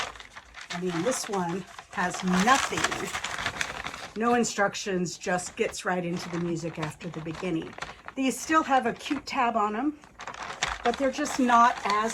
I mean, this one has nothing, no instructions, just gets right into the music after the beginning. These still have a cute tab on them, but they're just not as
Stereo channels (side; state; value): both; identical; correlation 1.00